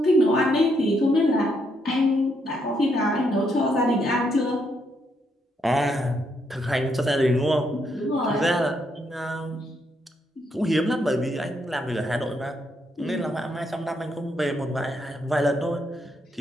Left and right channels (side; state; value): both; normal; correlation 0.76